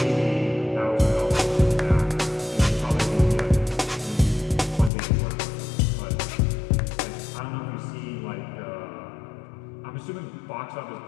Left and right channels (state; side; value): drops out; right; at 4.9 s